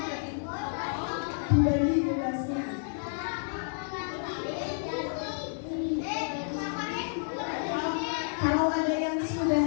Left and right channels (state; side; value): silent; right; 58 dB below the other